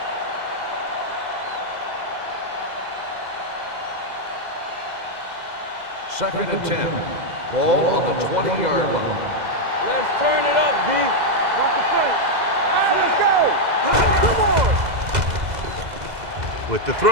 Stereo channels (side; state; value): left; late; 2.0 ms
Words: Second and 10. Ball on the 20-yard line. Let's turn it up, D. Watch the front. Let's go. Come on. With the